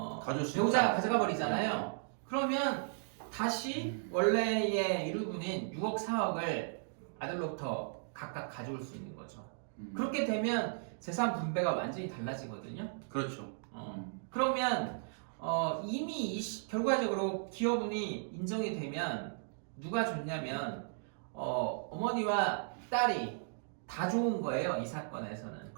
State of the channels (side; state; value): left; silent; digital silence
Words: 배우자가 가져가 버리잖아요. 그러면 다시 원래의 유류분인 6억 4억을 아들로부터 각각 가져올 수 있는 거죠. 그렇게 되면 재산 분배가 완전히 달라지거든요. 그렇죠. 그러면 이미 결과적으로 기업운이 인정이 되면 누가 좋냐면 어머니와 딸이 다 좋은 거예요. 이 사건에서는.